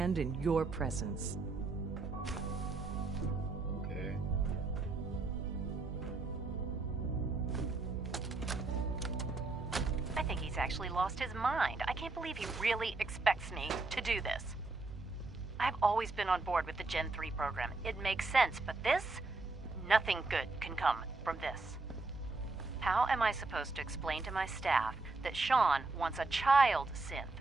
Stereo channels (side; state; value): left; quieter; 3.5 dB